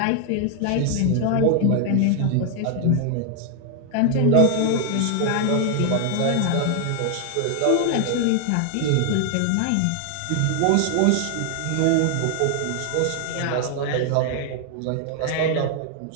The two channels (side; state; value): both; different; correlation 0.00